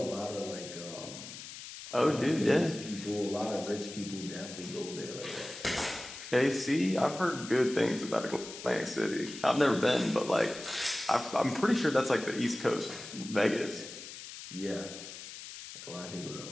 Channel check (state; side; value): noise; left; hiss, 12 dB below the sound